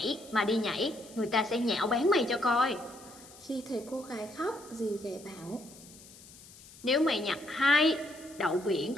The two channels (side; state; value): left; noise; hiss, 20 dB below the sound